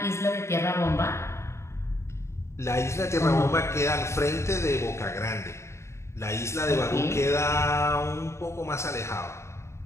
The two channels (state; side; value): late; right; 0.13 ms